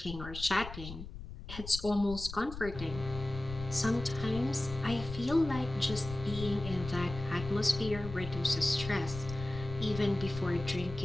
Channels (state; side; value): noise; left; rumble, 10 dB below the sound